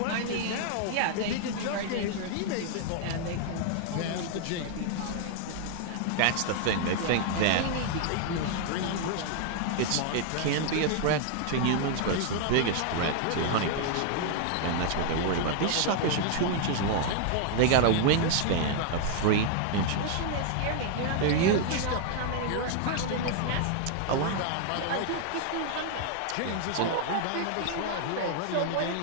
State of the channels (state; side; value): different; both; correlation 0.00